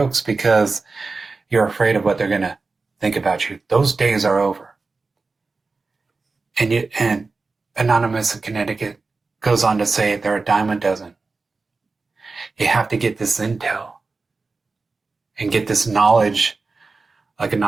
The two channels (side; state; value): left; quieter; 4.0 dB